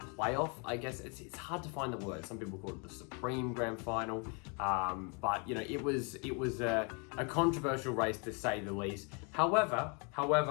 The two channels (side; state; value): right; quieter; 35.1 dB